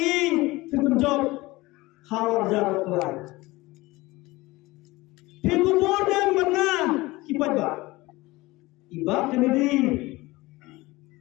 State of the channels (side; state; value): right; quieter; 20.6 dB